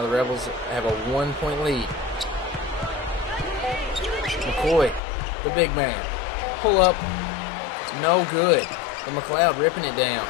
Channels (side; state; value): right; drops out; at 5.0 s